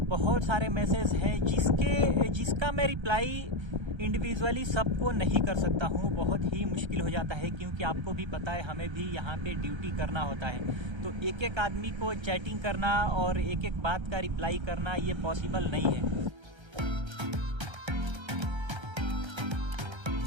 बहुत सारे मैसेज हैं जिसका मैं रिप्लाई इंडिविजुअली सबको नहीं कर सकता हूँ। बहुत ही मुश्किल हो जाता है, क्योंकि आपको भी पता है हमें भी यहाँ पे ड्यूटी करना होता है। तो एक एक आदमी को चैटिंग करना और एक एक बात का रिप्लाई करना ये पॉसिबल नहीं है।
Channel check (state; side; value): late; left; 1.3 ms